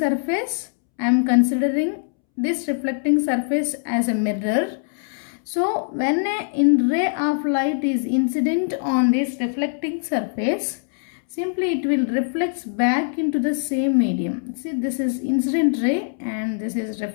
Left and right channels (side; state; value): right; silent; 64 dB below the other